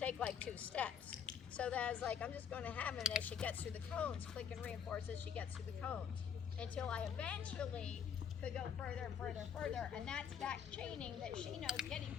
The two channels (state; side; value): quieter; right; 7.7 dB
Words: like 2 steps. So that I was like, I'm just going to have her, and as she gets through the cones, click and reinforce as she gets through the cones. Until I eventually could go further and further and further, and that's back chaining that she knows getting